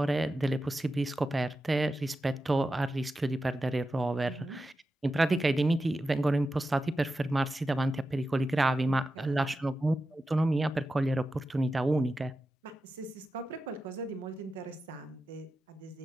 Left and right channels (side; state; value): both; normal; correlation 0.91